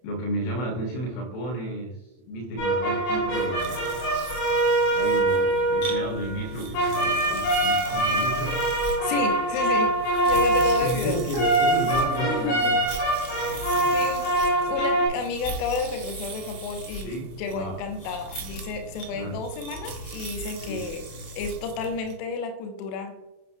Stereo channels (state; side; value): late; right; 32 ms